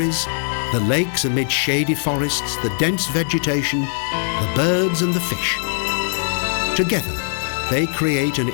the lakes amid shady forests, the dense vegetation, the birds and the fish. Together, they create an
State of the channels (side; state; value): right; silent; digital silence